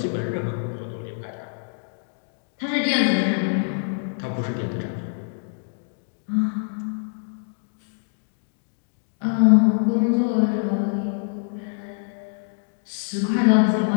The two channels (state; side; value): silent; right; digital silence